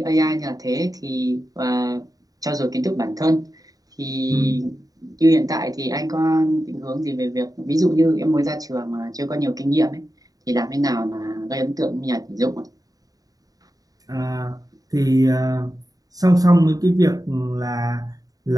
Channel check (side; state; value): left; late; 0.18 ms